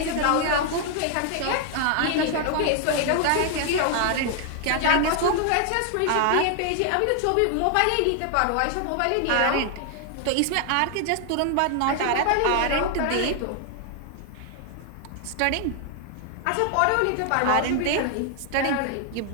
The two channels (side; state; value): both; different; correlation 0.00